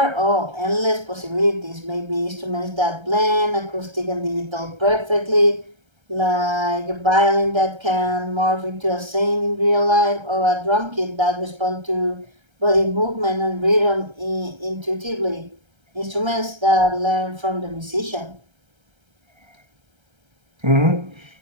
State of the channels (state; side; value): late; left; 1.3 ms